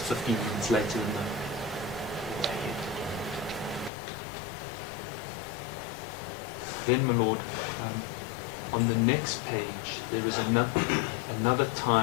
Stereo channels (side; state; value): right; drops out; at 3.9 s